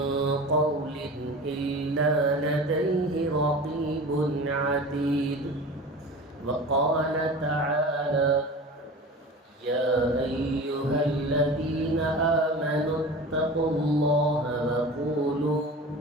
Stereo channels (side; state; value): both; normal; correlation 0.35